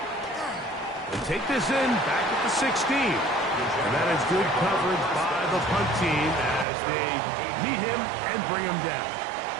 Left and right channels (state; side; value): drops out; left; at 6.7 s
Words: Take this in, back at the 16. And that is good coverage by the punt team as they meet him and bring him down.